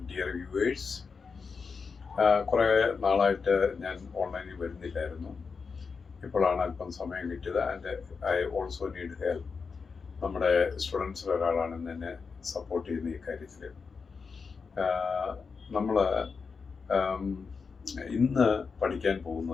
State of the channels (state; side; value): quieter; right; 5.2 dB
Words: dear viewers. കുറേ നാളായിട്ട് ഞാൻ ഓൺലൈനിൽ വരുന്നില്ലായിരുന്നു. ഇപ്പോഴാണ് അല്പം സമയം കിട്ടിയത്. And I also need help. നമ്മുടെ സ്റ്റുഡൻസിൽ ഒരാളാണ് എന്നെ സപ്പോർട്ട് ചെയ്യുന്ന ഈ കാര്യത്തിൽ. നമ്മൾ ഇന്ന് പഠിക്കാൻ